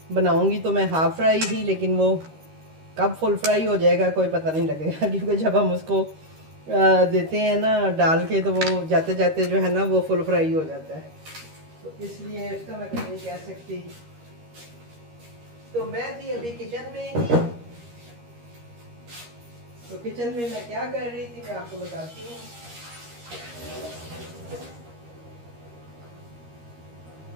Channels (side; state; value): left; late; 13 ms